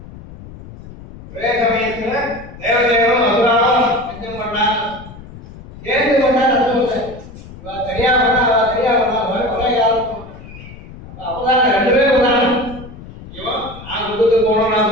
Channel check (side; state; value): left; noise; rumble, 16 dB below the sound